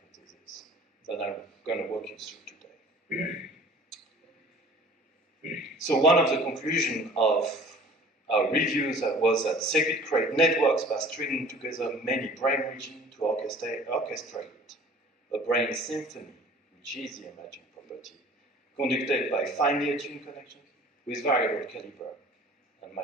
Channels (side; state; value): both; normal; correlation 0.48